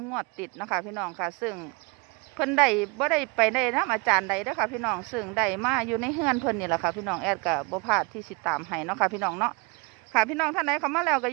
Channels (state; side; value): quieter; left; 29.8 dB